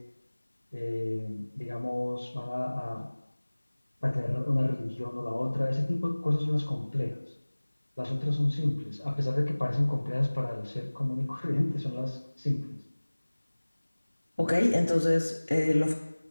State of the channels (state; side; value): inverted; both; correlation -1.00